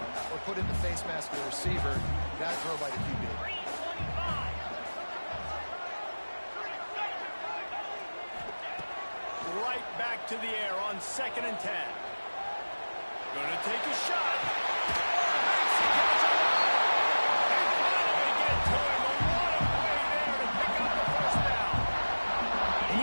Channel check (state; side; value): inverted; both; correlation -1.00